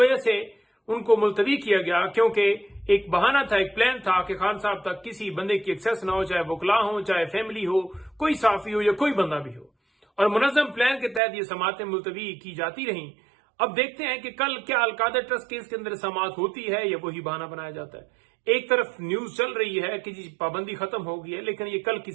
से उनको मुलतवी किया गया क्योंकि एक बहाना था, एक प्लान था कि खान साहब तक किसी बंदे की एक्सेस ना हो, चाहे वकला हो, चाहे फैमिली हो, कोई साफी हो या कोई बंदा भी हो। और मुनज़्ज़म प्लान के तहत ये समातें मुलतवी की जाती रहीं। अब देखते हैं कि कल क्या अलकादर ट्रस्ट केस के अंदर समात होती है या वही बहाना बनाया जाता है। एक तरफ न्यूज चल रही है कि जी पाबंदी खत्म हो गई है, लेकिन ये कल की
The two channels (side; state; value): left; drops out; at 11.2 s